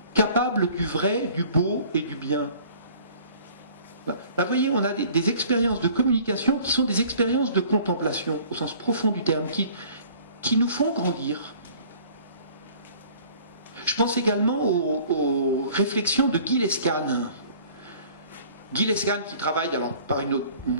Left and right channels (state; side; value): inverted; both; correlation -0.51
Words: capable du vrai, du beau et du bien. Là, vous voyez, on a des expériences de communication qui sont des expériences de contemplation, au sens profond du terme, qui nous font grandir. Je pense également aux réflexions de Guy Lescane. Guy Lescane qui travaille alors par une